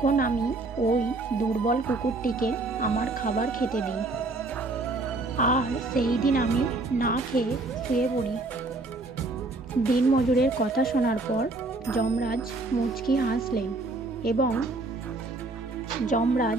আমি ওই দুর্বল কুকুরটিকে আমার খাবার খেতে দিই, আর সেই দিন আমি না খেয়ে শুয়ে পড়ি। দিনমজুরের কথা শোনার পর যমরাজ মুচকি হাসলেন এবং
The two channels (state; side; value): quieter; left; 3.2 dB